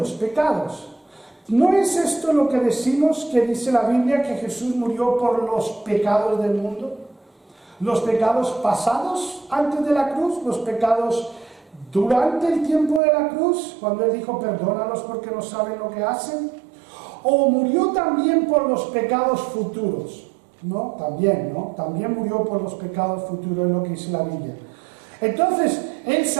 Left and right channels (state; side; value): drops out; left; at 13.0 s